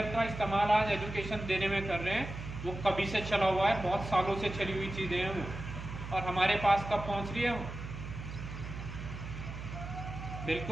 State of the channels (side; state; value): right; noise; hum, 9 dB below the sound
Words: का इस्तेमाल आज एजुकेशन देने में कर रहे हैं वो कभी से चला हुआ है, बहुत सालों से चली हुई चीज़ें हैं वो, और हमारे पास कब पहुंच रही है वो?